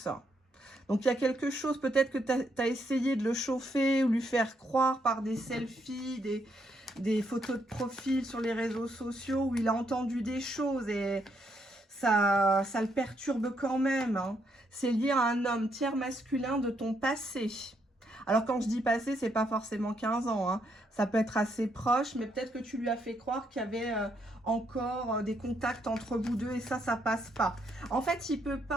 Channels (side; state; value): both; normal; correlation 0.75